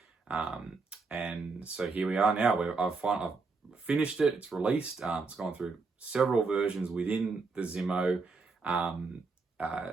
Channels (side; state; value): left; quieter; 4.2 dB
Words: And so here we are now. I've finished it, it's released. It's gone through several versions within the Zimo